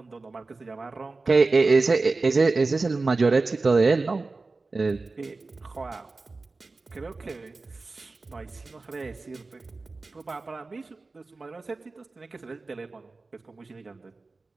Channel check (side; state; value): left; quieter; 3.6 dB